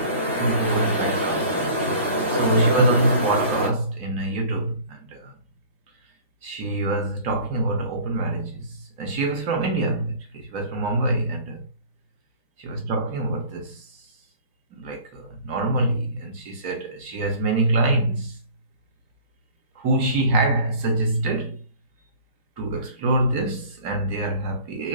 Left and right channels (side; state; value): both; inverted; correlation -0.46